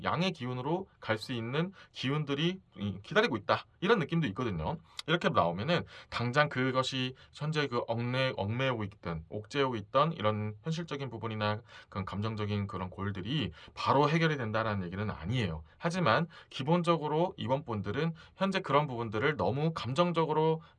양의 기운으로 갈 수 있는 기운들이 기다리고 있다. 이런 느낌도 있거든요. 이렇게 나오면은 당장 그것이 현재 그 얽매이고 있던 옥죄고 있던 이런 현실적인 부분이나 그런 감정적인 그런 골들이 바로 해결이 된다라는 얘기는 아니에요. 하지만 기본적으로 이번 분들은 현재 그런 부분들을 너무 감정적으로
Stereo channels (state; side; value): identical; both; correlation 1.00